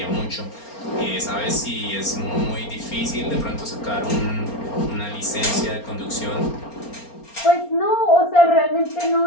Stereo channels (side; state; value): right; late; 4.3 ms